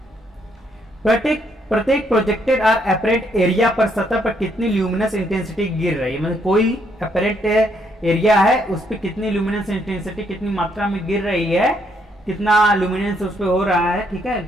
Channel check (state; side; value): normal; both; correlation 0.72